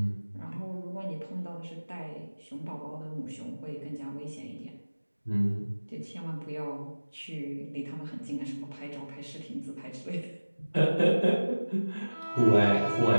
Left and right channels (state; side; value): inverted; both; correlation -1.00